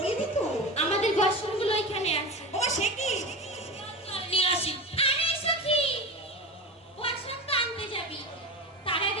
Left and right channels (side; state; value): both; normal; correlation 0.26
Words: তো? আমাদের বাসনগুলো ওইখানে আছে। ও সে কি? নিয়ে আসি। আরে সখী, বাসন তো আনতে যাবি, তার আগে